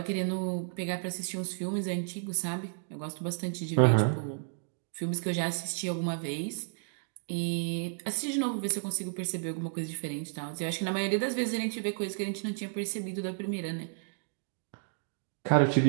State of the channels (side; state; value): left; silent; digital silence